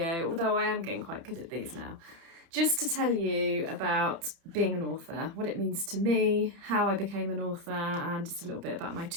although I am getting quite good at these now, just to tell you about being an author, what it means to me, how I became an author, and just a little bit about my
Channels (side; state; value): left; late; 30 ms